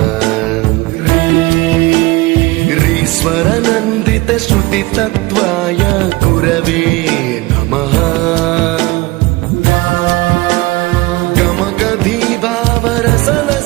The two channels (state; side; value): quieter; left; 21.4 dB